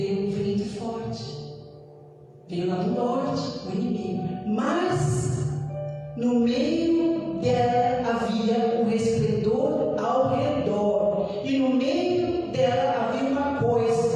um vento forte. Veio lá do norte, o inimigo. Mas no meio dela havia um resplendor ao redor. E no meio dela havia uma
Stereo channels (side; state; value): both; identical; correlation 1.00